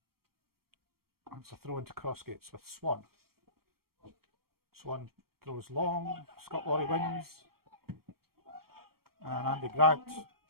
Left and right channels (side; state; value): left; late; 0.94 ms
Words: It's a throw into Crossgates with Swan. Swan throws long. Scott Laurie wins. And Andy Grant